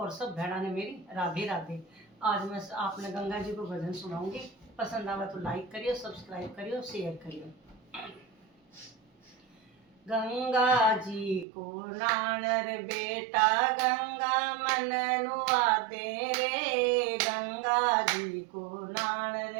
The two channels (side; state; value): left; drops out; at 11.5 s